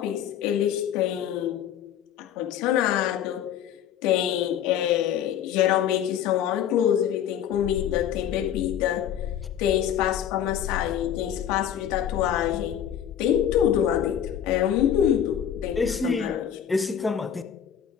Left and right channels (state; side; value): quieter; right; 9.7 dB